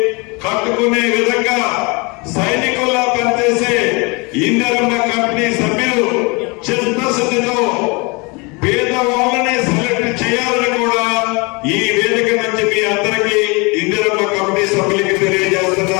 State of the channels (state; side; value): quieter; right; 28.7 dB